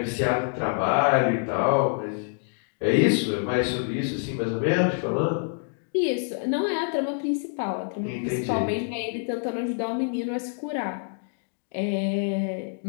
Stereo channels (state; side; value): silent; right; digital silence